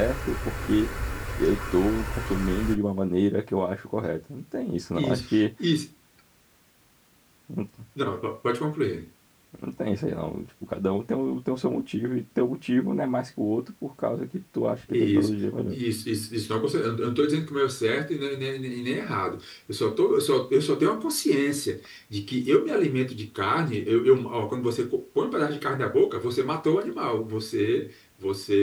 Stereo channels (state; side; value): identical; both; correlation 1.00